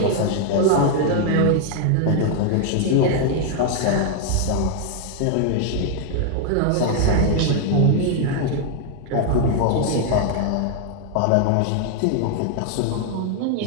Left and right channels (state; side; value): different; both; correlation 0.00